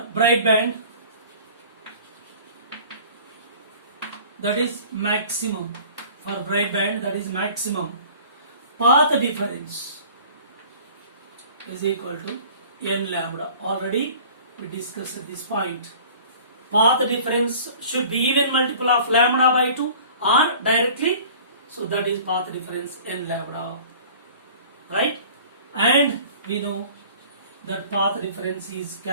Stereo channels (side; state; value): both; inverted; correlation -0.46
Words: bright band, that is maximum. For bright band, that is maximum. Path difference is equal to n lambda. Already we discussed at this point. Path difference should be even multiple of lambda by 2 or directly. So that is path difference n lambda. Right? And we know that path difference is